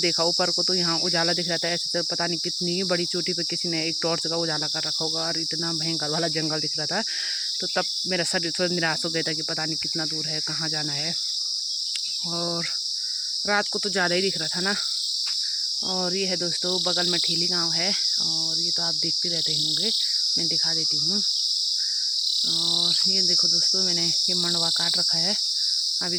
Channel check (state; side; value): identical; both; correlation 1.00